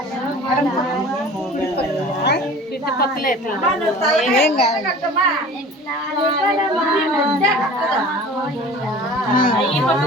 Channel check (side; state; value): both; normal; correlation 0.42